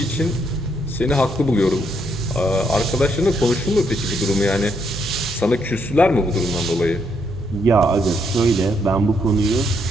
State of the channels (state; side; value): normal; both; correlation 0.74